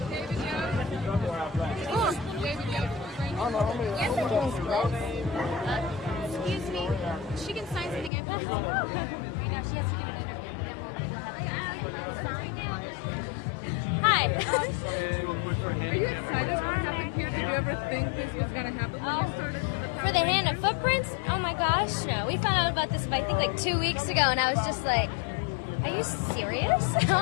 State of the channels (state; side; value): drops out; right; at 8.1 s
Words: Yes, it is. Excuse me. She can sign something after this. Right now, she has to give it Hi. Are you excited what happened here? Did you ever think this was going to happen when you started with the Power For the Rangers? hand of footprints? Oh my gosh, no. We found out about this, I think, like 2 weeks ago, and I was just like, are you serious?